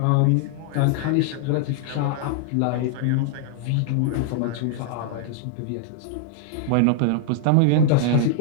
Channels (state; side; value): different; both; correlation -0.01